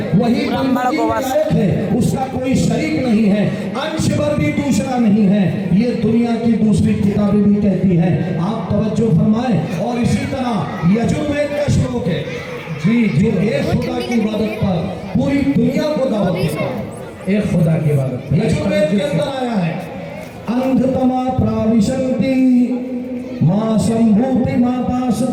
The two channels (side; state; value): both; identical; correlation 1.00